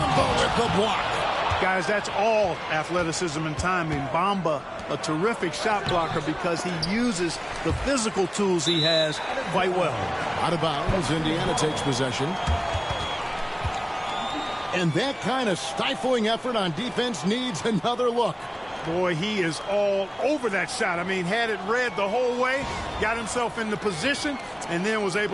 with the block. Guys, that's all athleticism and timing. Bamba, a terrific shot blocker because he uses the physical tools he has quite well. Out of bounds, Indiana takes possession. And that kind of stifling effort on defense needs another look. Boy, he is all over that shot. I mean, had it read the whole way, got himself in the position, and then was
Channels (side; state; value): both; identical; correlation 1.00